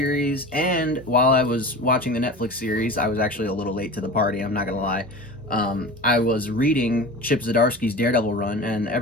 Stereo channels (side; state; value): both; normal; correlation 0.33